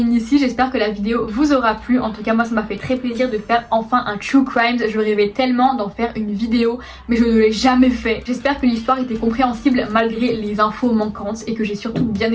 ici, j'espère que la vidéo vous aura plu. En tout cas, moi ça m'a fait très plaisir de faire enfin un True Crimes. Je rêvais tellement d'en faire une vidéo, mais je ne l'ai jamais fait. J'espère que l'histoire était compréhensible malgré les infos manquantes et que j'ai surtout bien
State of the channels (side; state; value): both; identical; correlation 1.00